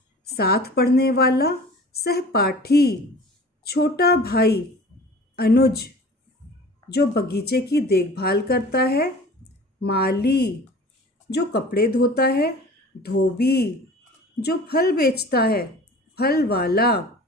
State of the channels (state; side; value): normal; both; correlation 0.42